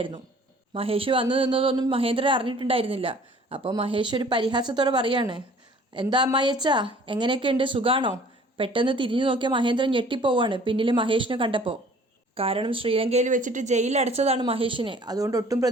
മഹേഷ് വന്നു നിന്നതൊന്നും മഹേന്ദ്രൻ അറിഞ്ഞിട്ടുണ്ടായിരുന്നില്ല. അപ്പോൾ മഹേഷ് ഒരു പരിഹാസത്തോടെ പറയാണ്, എന്താ അമ്മായിയച്ചാ, എങ്ങനെയൊക്കെയുണ്ട്, സുഖാണോ? പെട്ടെന്ന് തിരിഞ്ഞു നോക്കിയ മഹേന്ദ്രൻ ഞെട്ടിപ്പോവാണ് പിന്നിൽ മഹേഷിനെ കണ്ടപ്പോൾ. കാരണം ശ്രീലങ്കയിൽ വെച്ചിട്ട് ജയിലിലടച്ചതാണ് മഹേഷിനെ. അതുകൊണ്ട് ഒട്ടും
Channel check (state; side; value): normal; both; correlation 0.52